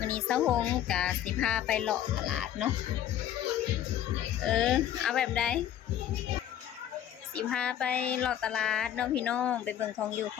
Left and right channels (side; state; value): right; quieter; 11.0 dB